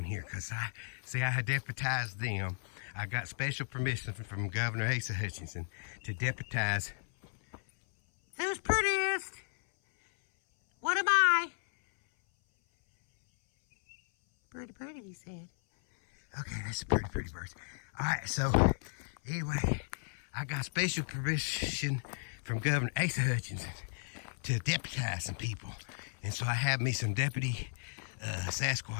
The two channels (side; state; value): right; silent; 55 dB below the other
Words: here, because I had deputized them. I got special permission from Governor Asa Hutchinson to deputize. Who's prettiest? What am I? Pretty, pretty, he said. Okay, that's a pretty, pretty bird. All right, so anyway, I got special permission from Governor Asa Hutchinson to deputize some people. And so I have me some deputy